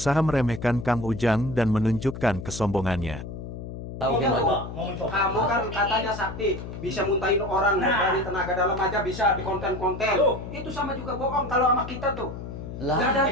meremehkan Kang Ujang dan menunjukkan kesombongannya. Tahu gimana? Kamu kan katanya sakti, bisa muntahin orang dari tenaga dalam aja bisa di konten-konten. Itu sama juga bohong kalau sama kita tuh. Lah, Gak ada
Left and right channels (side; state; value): left; noise; hum, 9 dB below the sound